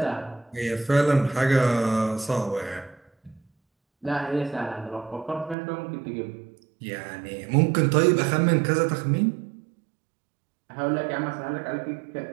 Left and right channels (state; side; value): drops out; left; at 5.6 s